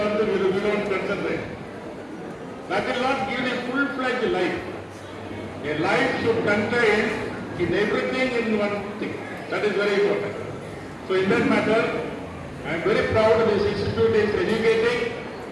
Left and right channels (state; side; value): identical; both; correlation 1.00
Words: we don't concentrate. That will not give a full-fledged life. A life should contain in everything in one thing. That is very important. So in that matter, I am very proud this institute is educating